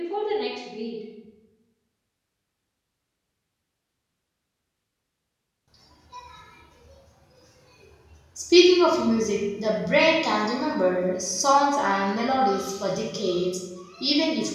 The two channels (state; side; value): identical; both; correlation 1.00